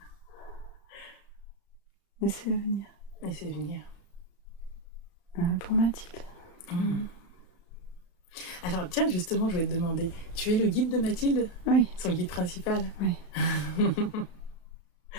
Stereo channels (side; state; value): right; late; 35 ms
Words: Laissez venir. Laissez venir. Pour Mathilde. Alors tiens, justement, je vais te demander, tu es le guide de Mathilde? Oui. Son guide principal? Oui.